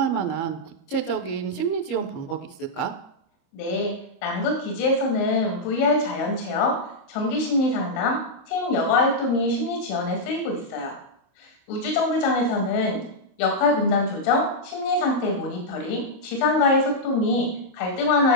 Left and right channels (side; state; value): right; late; 24 ms